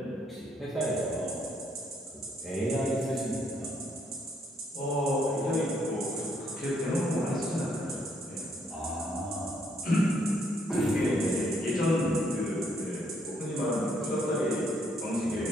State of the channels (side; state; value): both; normal; correlation 0.71